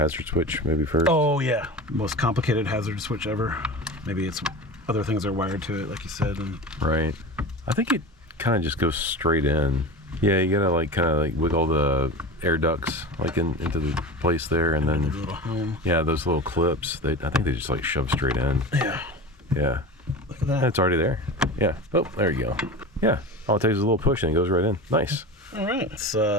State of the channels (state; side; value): normal; both; correlation 0.30